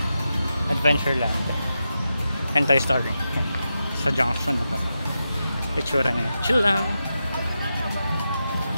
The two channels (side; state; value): both; inverted; correlation -0.89